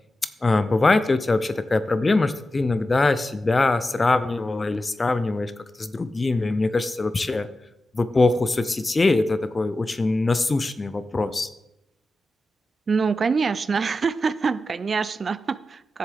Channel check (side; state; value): both; normal; correlation 0.92